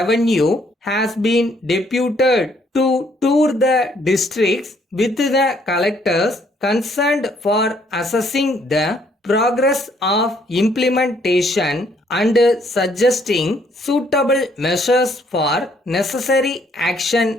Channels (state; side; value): normal; both; correlation 0.67